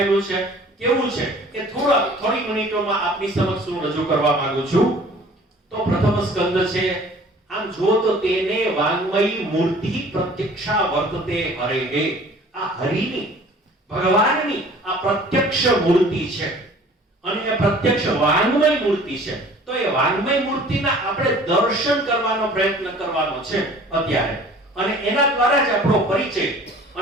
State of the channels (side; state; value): both; normal; correlation 0.49